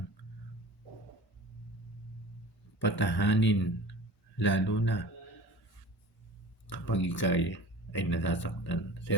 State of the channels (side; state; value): both; normal; correlation 0.38